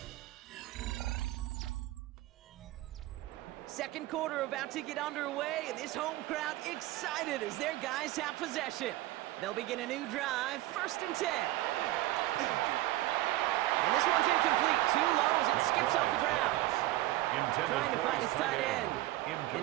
Second quarter about to get underway, and this home crowd excited as their guys have possession. They'll begin a new drive, 1st and 10. And this one's incomplete, too low as it skips off the ground. Trying to find his tight end.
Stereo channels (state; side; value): quieter; left; 16.8 dB